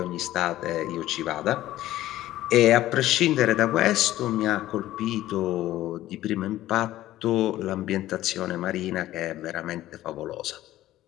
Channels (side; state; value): right; quieter; 14.7 dB